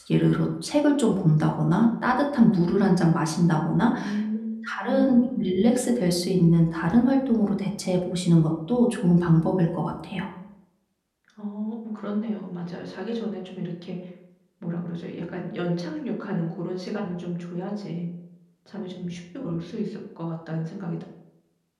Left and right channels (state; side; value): identical; both; correlation 1.00